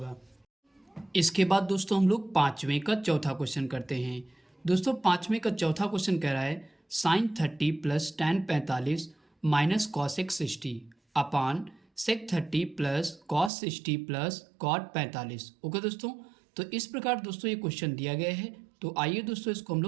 इसके बाद दोस्तों हम लोग पाँचवें का चौथा क्वेश्चन करते हैं। दोस्तों पाँचवें का चौथा क्वेश्चन कह रहा है sine 30 plus tan 45 minus cos x 60 upon sec 30 plus cos 60 plus cot 45। Okay दोस्तों, तो इस प्रकार दोस्तों ये क्वेश्चन दिया गया है। तो आइए दोस्तों इसको हम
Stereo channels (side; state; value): left; drops out; at 13.5 s